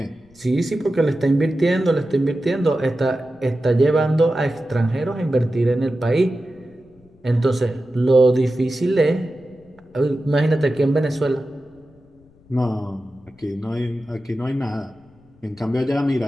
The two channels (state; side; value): noise; left; rumble, 29 dB below the sound